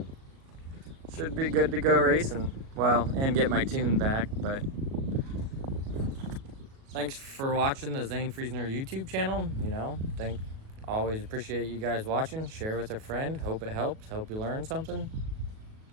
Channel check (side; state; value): left; late; 37 ms